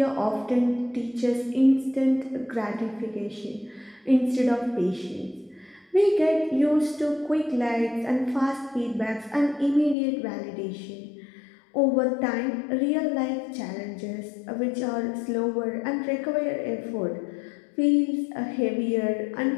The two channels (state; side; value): drops out; right; at 10.0 s